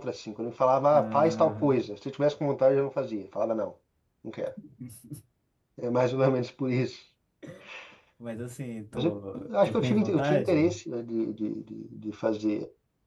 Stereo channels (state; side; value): identical; both; correlation 1.00